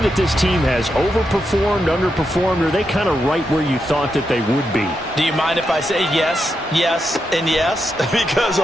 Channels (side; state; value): both; normal; correlation 0.84